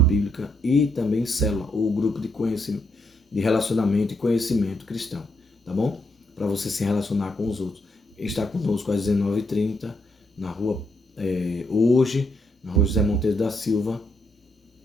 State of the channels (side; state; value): both; normal; correlation 0.77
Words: e também Célula, o grupo de conhecimento, de relacionamento e conhecimento cristão, tá bom? Para você se relacionar com os outros. Está conosco às 19h30, na rua, hoje, na rua José Monteiro da Silva,